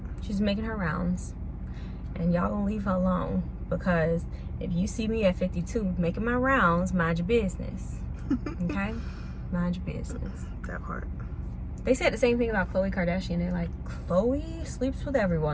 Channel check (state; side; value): identical; both; correlation 1.00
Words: She's making her rounds. And y'all gonna leave her alone. Because if you see me at 52 making my rounds, mind your business. Okay? Mind your business. That part. They said the same thing about Khloe Kardashian. They're like, Khloe sleeps with